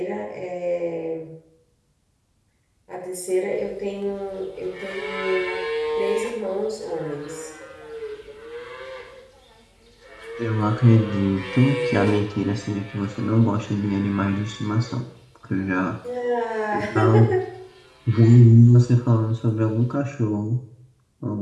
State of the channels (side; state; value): both; identical; correlation 1.00